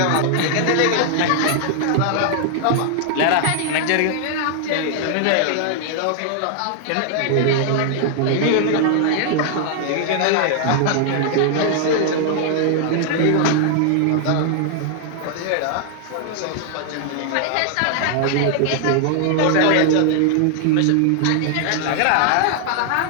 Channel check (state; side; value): different; both; correlation 0.00